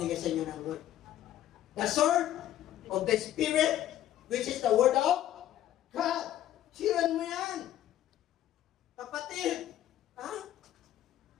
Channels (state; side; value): quieter; right; 12.5 dB